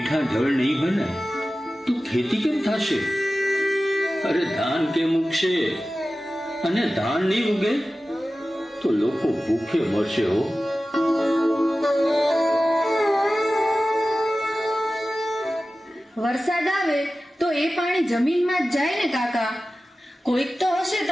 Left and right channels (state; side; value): normal; both; correlation 0.95